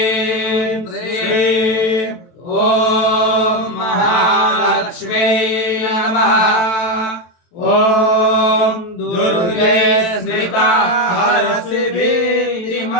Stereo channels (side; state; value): right; late; 23 ms